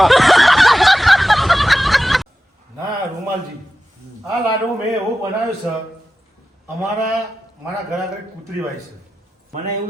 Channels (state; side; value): normal; both; correlation 0.93